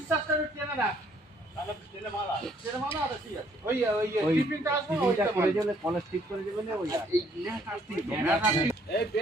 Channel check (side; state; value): both; normal; correlation 0.65